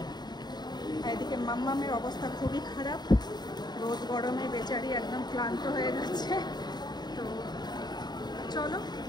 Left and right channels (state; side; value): late; right; 0.20 ms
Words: আর এদিকে মাম্মামের অবস্থা খুবই খারাপ, রোদ গরমে বেচারি একদম ক্লান্ত হয়ে গেছে। তো চলো